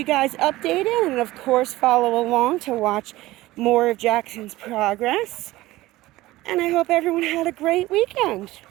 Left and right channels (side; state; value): left; quieter; 17.7 dB